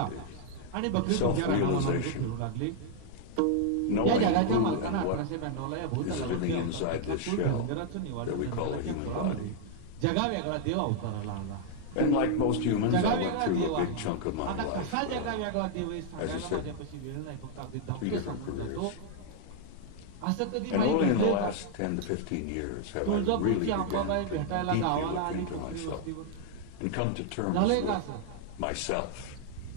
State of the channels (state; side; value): different; both; correlation -0.01